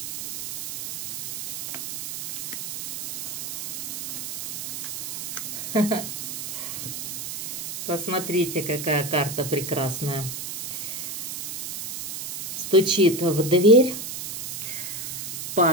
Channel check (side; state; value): right; noise; hiss, 6 dB below the sound